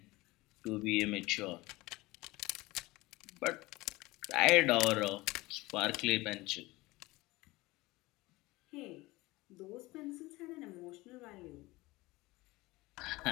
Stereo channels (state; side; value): quieter; right; 20.9 dB